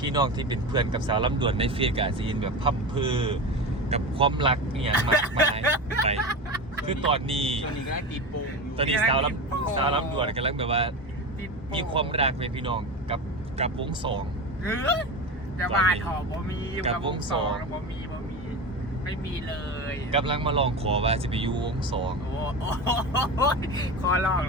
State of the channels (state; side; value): normal; both; correlation 0.24